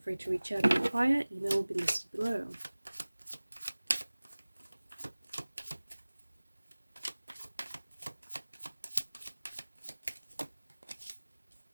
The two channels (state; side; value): inverted; both; correlation -1.00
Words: free to reach out and inquire. Email will be listed below.